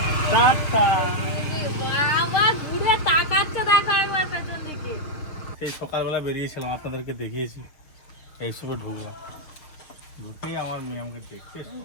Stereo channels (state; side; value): late; right; 6.5 ms